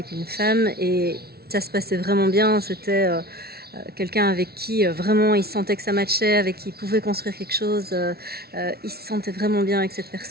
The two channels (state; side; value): late; left; 0.45 ms